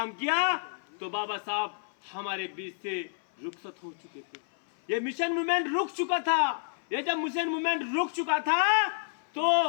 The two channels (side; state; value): right; silent; 58 dB below the other